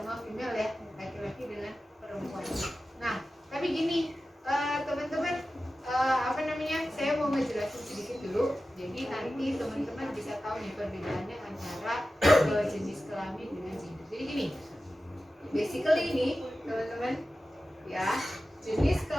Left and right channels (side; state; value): both; normal; correlation 0.94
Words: female ya, laki-laki dengan perempuan. Nah tapi gini teman-teman saya mau ngejelasin sedikit dulu. Jadi nanti teman-teman bisa tahu nih perbedaannya antara jenis kelamin dengan gender. Jadi gini, basically ini teman-teman ya, jenis